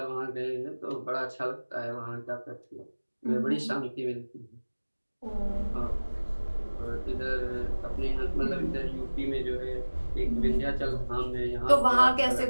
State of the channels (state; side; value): inverted; both; correlation -1.00